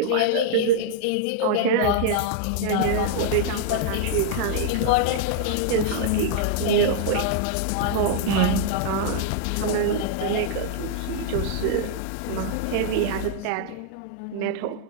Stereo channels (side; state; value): both; different; correlation -0.01